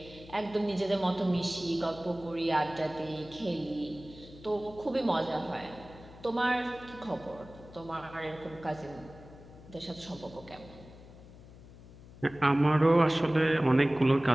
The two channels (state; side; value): noise; left; hum, 19 dB below the sound